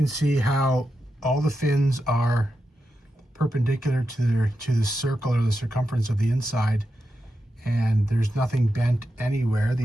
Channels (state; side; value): normal; both; correlation 0.88